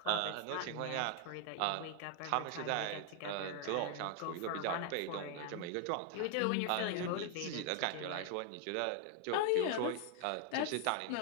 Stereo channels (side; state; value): both; different; correlation 0.01